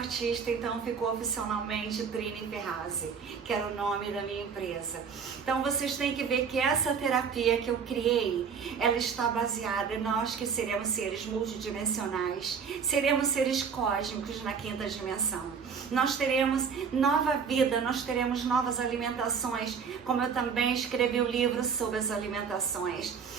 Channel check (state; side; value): quieter; left; 6.4 dB